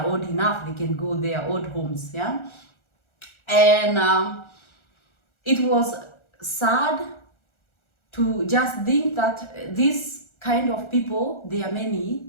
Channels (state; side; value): late; right; 1.4 ms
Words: old enough, they can go their old homes, yeah. And it was sad to just think that these kind of people, they are many,